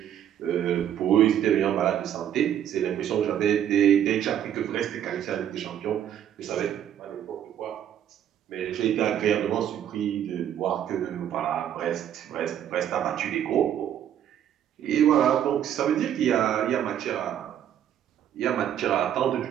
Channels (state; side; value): quieter; left; 10.2 dB